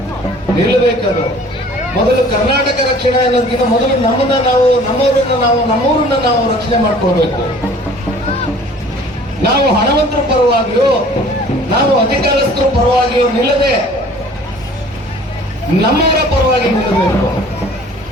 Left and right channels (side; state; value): both; normal; correlation 0.50